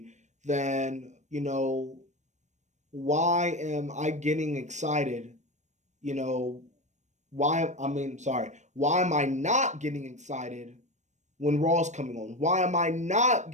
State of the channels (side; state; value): left; late; 0.34 ms